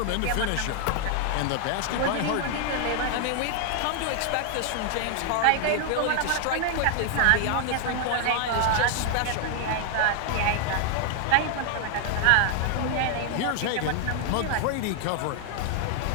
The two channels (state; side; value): different; both; correlation 0.00